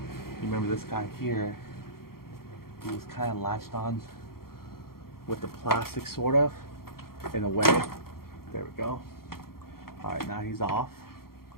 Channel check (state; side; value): late; right; 0.93 ms